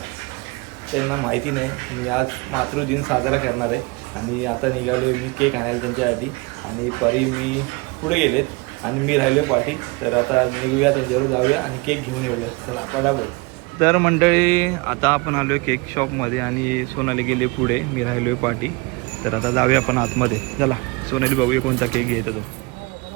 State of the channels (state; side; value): quieter; left; 26.5 dB